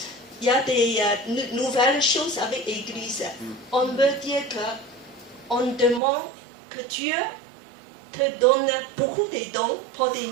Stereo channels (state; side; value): drops out; left; at 6.0 s